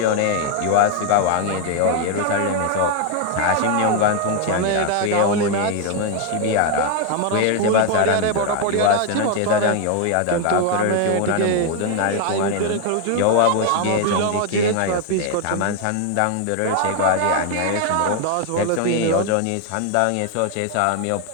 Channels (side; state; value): both; different; correlation 0.01